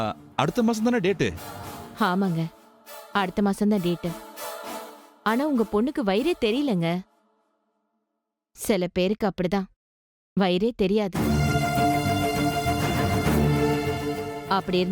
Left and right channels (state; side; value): identical; both; correlation 1.00